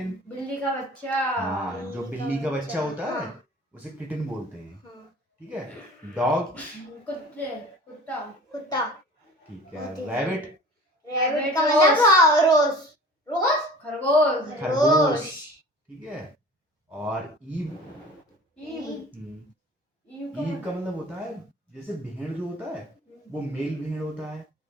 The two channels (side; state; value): both; normal; correlation 0.42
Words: बिल्ली का बच्चा। हाँ, जो बिल्ली का बच्चा होता है हाँ। उसे किटन बोलते हैं। हाँ। ठीक है, डॉग। कुत्ते। कुत्ता। कुत्ता। ठीक है, रैबिट। रैबिट का मतलब रोज। रोज। खरगोश। खरगोश। ठीक है, और ईव। ईव। ईव ईव का मतलब होता है, जैसे भेड़ जो होता है वो मेल भेड़ होता है,